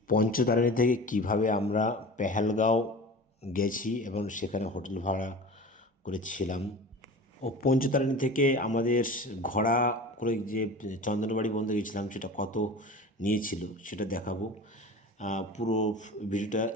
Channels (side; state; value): both; normal; correlation 0.36